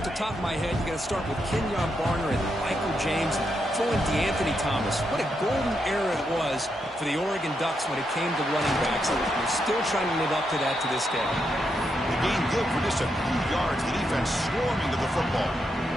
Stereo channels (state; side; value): normal; both; correlation 0.82